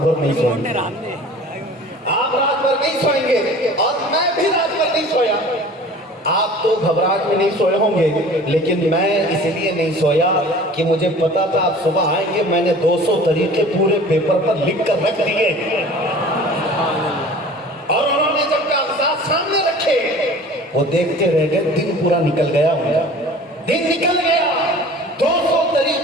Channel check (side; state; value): both; normal; correlation 0.44